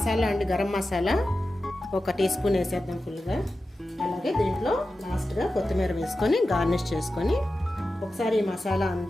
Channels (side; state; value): both; normal; correlation 0.93